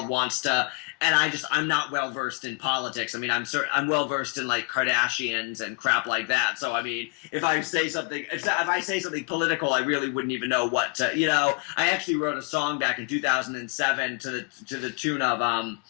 wants to, and I'm not well versed in politics. I mean, I'm well versed in like Kardashians and crap like that. So I mean, if I say something political, I really wouldn't even know what to, I actually wrote a song back in 2007 to the tune of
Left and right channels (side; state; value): right; quieter; 34.9 dB